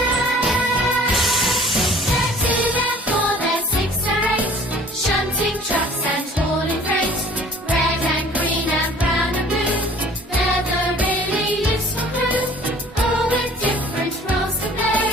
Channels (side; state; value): both; normal; correlation 0.51